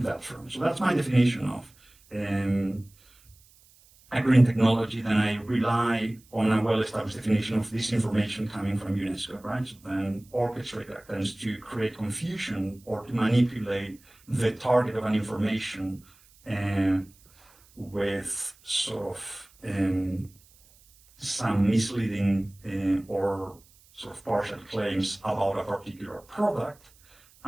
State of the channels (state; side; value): noise; right; hiss, 28 dB below the sound